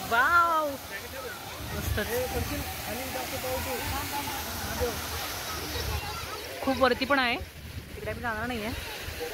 वाव मस्त. खूप वरती पण आहे तिकडे, आम्ही जाणार नाही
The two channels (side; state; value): both; identical; correlation 1.00